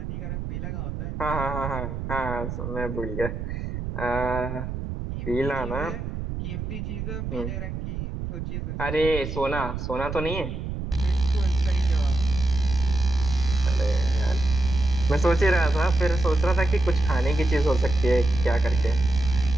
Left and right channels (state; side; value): noise; right; rumble, 5 dB below the sound